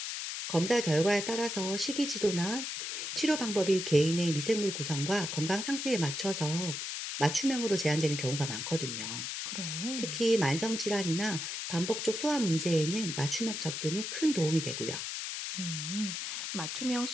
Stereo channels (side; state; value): left; noise; hiss, 4 dB below the sound